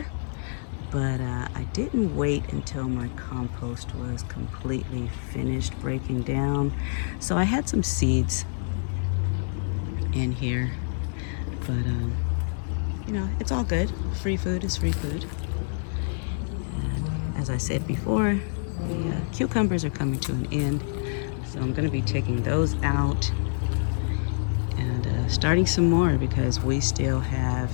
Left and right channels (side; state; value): right; silent; 60 dB below the other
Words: but I didn't wait until my compost was completely finished breaking down. So I had some seeds in here, but you know, it's all good. Free food is free food. And as I said before, the cucumbers are coming to an end, so I'm going to be taking those out and starting some more because we still have